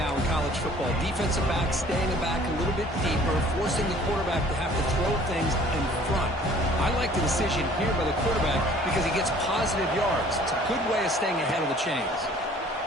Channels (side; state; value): both; normal; correlation 0.53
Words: in college football. Defensive backs staying back a little bit deeper, forcing the quarterback to have to throw things in front. I like the decision here by the quarterback because he gets positive yards. It's a good way of staying ahead of the chains.